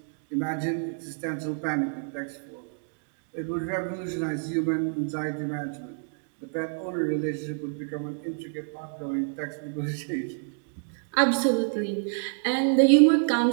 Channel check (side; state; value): left; silent; digital silence